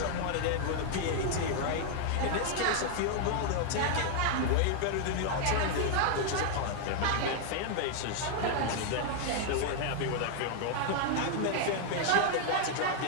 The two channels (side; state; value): both; different; correlation 0.00